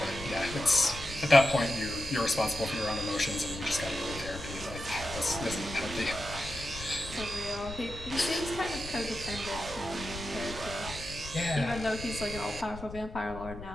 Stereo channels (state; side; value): noise; left; rumble, 12 dB below the sound